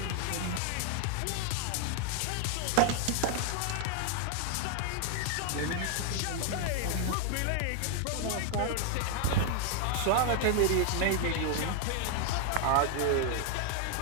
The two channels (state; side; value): different; both; correlation 0.00